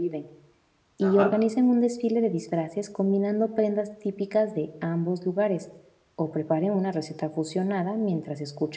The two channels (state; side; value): identical; both; correlation 1.00